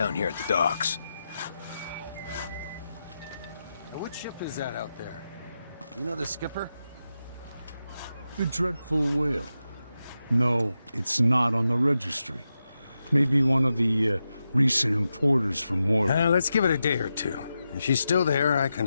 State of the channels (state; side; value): inverted; both; correlation -0.89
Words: here at the docks. Now, what ship is that out there? You know the skipper? The Dreadful Whale. No, it's not on the registry. Maybe one of the recent importers from Mordor. Let's give it a day or two. If she's still there, I